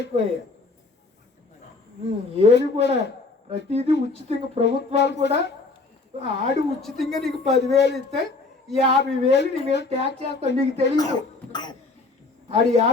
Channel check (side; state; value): right; quieter; 3.7 dB